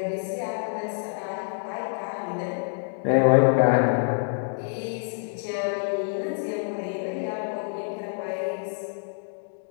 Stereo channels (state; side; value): silent; right; digital silence